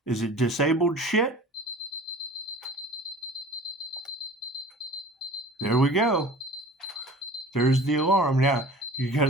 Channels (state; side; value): normal; both; correlation 0.43